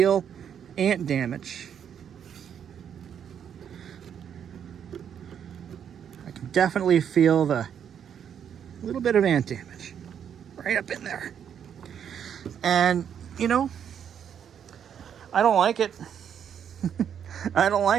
ant damage. I can definitely feel the little bit of ant damage right up in there. And, I don't like it. I don't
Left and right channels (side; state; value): left; quieter; 8.5 dB